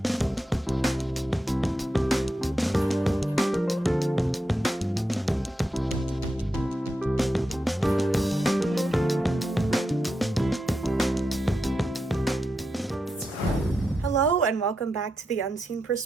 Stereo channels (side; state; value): both; normal; correlation 0.86